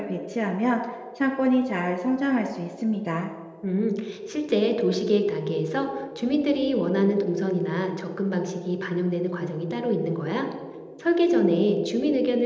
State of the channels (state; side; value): identical; both; correlation 1.00